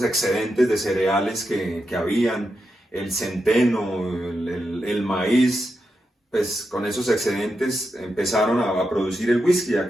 excedentes de cereales que habían, el centeno, el maíz, pues con esos excedentes empezaron a producir el whisky.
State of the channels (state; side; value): normal; both; correlation 0.86